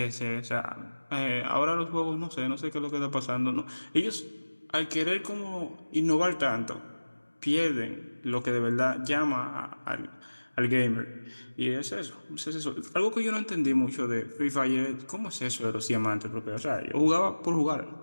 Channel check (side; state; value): both; inverted; correlation -1.00